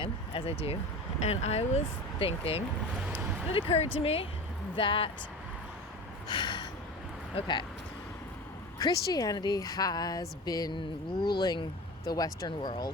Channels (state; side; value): normal; both; correlation 0.32